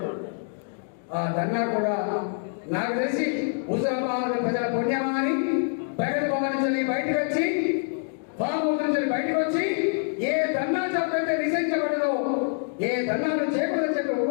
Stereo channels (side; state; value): right; silent; 61 dB below the other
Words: ఆ ధర్నా కూడా నాకు తెలిసి హుజరాబాద్ ప్రజల పుణ్యమా అని ప్రగతి భవన్ నుంచి బయటకు వచ్చి, ఫామ్ హౌస్ నుంచి బయటకు వచ్చి ఏ ధర్నా చౌకైతే నిషేధించబడదో, ఏ ధర్నాలు చేయకూడదని చెప్పి